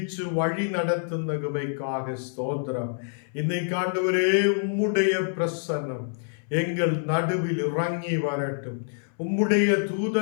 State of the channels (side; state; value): right; silent; 61 dB below the other